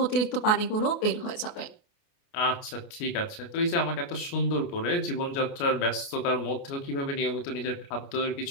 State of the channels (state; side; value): late; right; 29 ms